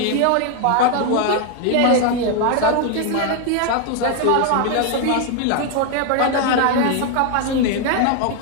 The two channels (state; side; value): different; both; correlation 0.01